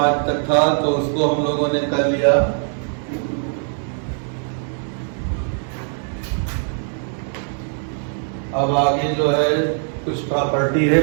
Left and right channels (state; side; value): silent; left; 60 dB below the other